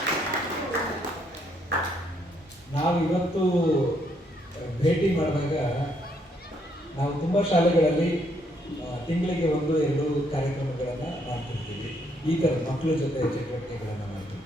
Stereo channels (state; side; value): normal; both; correlation 0.72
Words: ನಾವು ಇವತ್ತು ಭೇಟಿ ಮಾಡಿದಾಗ ನಾವು ತುಂಬ ಶಾಲೆಗಳಲ್ಲಿ ತಿಂಗಳಿಗೆ 1-2 ಕಾರ್ಯಕ್ರಮಗಳನ್ನು ಮಾಡ್ತಿರ್ತೀವಿ. ಈ ಥರ ಮಕ್ಕಳ ಜೊತೆ ಚಟುವಟಿಕೆಗಳನ್ನು